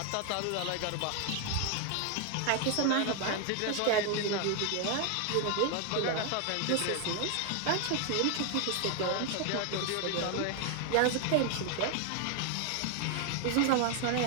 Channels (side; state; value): both; different; correlation 0.00